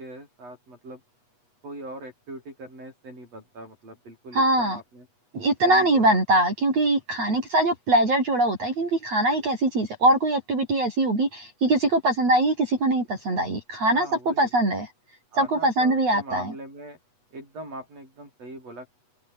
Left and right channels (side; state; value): left; late; 8.2 ms